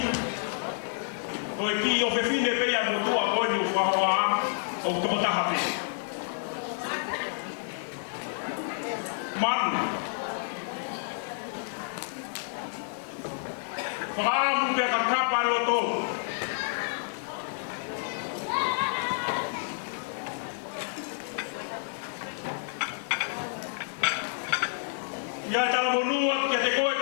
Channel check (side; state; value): right; silent; 56 dB below the other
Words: Koe ki o whewhine pea mo tua honi o whahoa o tomotaha pe. Manu. Whaamu pea ka kapa loto. Ia tala monua kia te koe